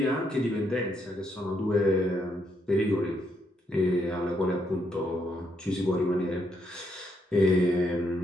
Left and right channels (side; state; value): both; normal; correlation 0.76